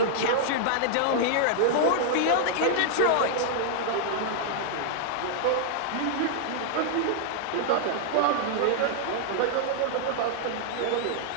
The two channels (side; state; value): both; different; correlation -0.01